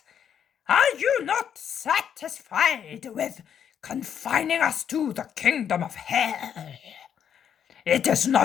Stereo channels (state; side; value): quieter; right; 8.5 dB